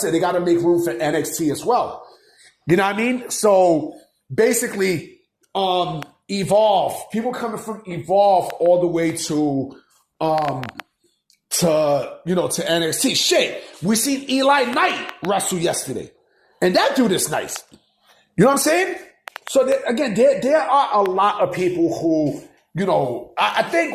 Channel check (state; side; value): identical; both; correlation 1.00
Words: they got to make room for NXT as well. You know what I mean? So basically, Evolve, people coming from Evolve all the way to NXT. Shit, we seen Eli Knight wrestle yesterday. And that dude is nice. You know what I'm saying? So there are a lot of people who, I